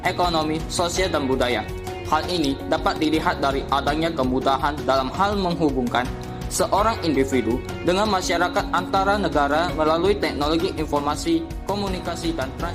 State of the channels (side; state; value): both; identical; correlation 1.00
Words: ekonomi, sosial, dan budaya. Hal ini dapat dilihat dari adanya kemudahan dalam hal menghubungkan seorang individu dengan masyarakat antara negara melalui teknologi informasi, komunikasi, dan